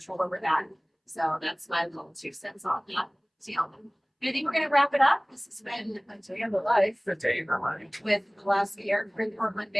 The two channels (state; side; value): identical; both; correlation 1.00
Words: over that. So that's my little 2 cents on that. I think we're going to wrap it up. This has been a day of the life The day in the life. with Alaska Air, Portland